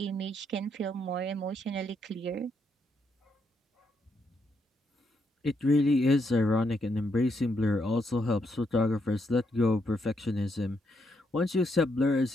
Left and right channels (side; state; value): both; normal; correlation 0.77